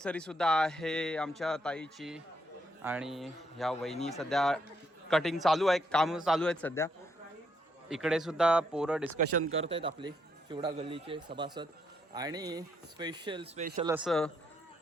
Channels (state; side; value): normal; both; correlation 0.75